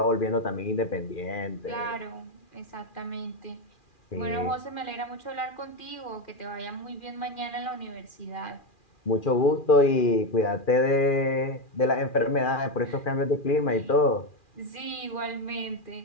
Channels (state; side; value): late; right; 2.4 ms